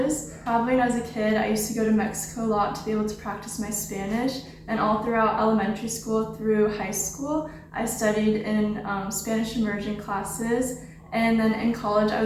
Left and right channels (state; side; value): identical; both; correlation 1.00